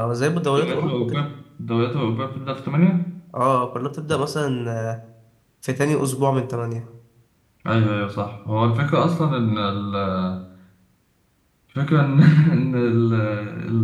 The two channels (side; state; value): both; identical; correlation 1.00